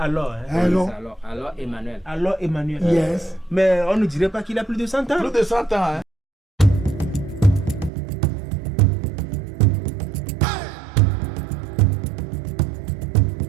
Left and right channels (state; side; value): drops out; left; at 7.9 s